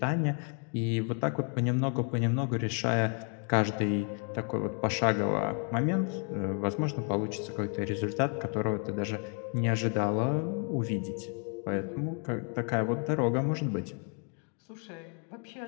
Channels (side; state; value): right; quieter; 39.6 dB